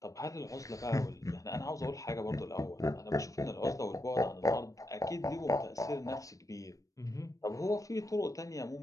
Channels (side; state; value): right; late; 0.16 ms